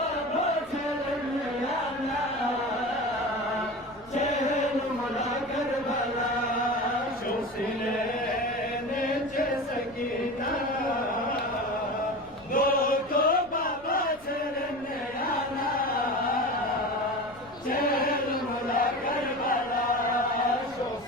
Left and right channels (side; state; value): left; noise; rumble, 26 dB below the sound